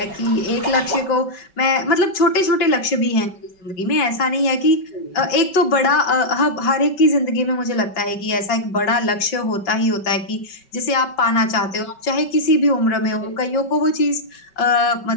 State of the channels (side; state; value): right; late; 5.3 ms